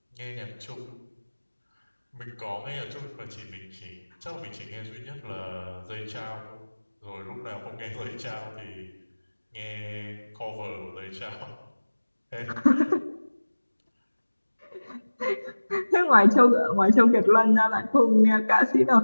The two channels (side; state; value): both; inverted; correlation -1.00